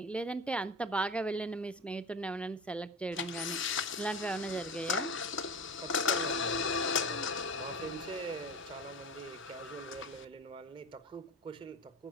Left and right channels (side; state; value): both; normal; correlation 0.32